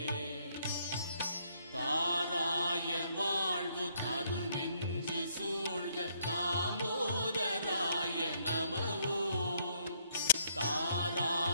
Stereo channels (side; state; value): both; inverted; correlation -0.70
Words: தாராய வாழ்வு தரு நெஞ்சு சூழ்க தாமோதராய நமவோம்